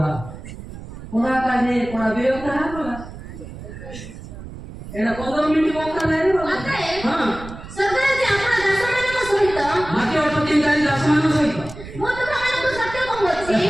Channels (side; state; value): right; noise; rumble, 13 dB below the sound